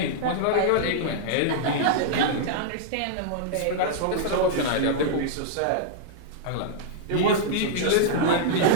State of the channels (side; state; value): both; different; correlation -0.01